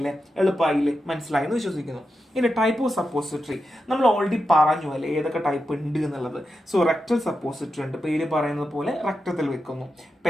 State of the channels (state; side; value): normal; both; correlation 0.88